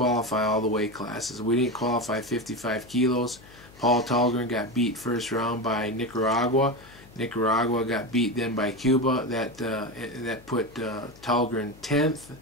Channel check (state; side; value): noise; left; hum, 22 dB below the sound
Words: all the weight classes. We didn't qualify 55 kilos. Paul Tallgren got beat first round by Nicaragua. Nicaragua got beat then by Cuba. That put Tallgren 10th.